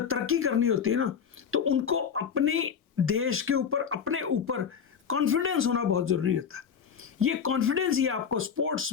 तरक्की करनी होती है ना, तो उनको अपने देश के ऊपर, अपने ऊपर कॉन्फिडेंस होना बहुत ज़रूरी होता है। ये कॉन्फिडेंस ही आपको स्पोर्ट्स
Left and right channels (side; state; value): right; quieter; 7.1 dB